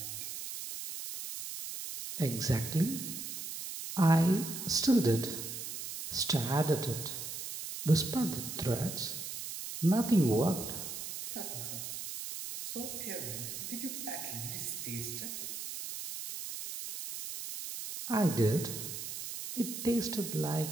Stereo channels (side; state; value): right; noise; hiss, 7 dB below the sound